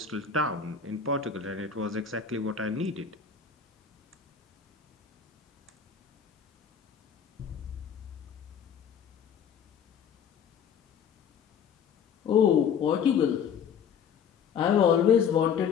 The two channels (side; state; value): right; quieter; 7.2 dB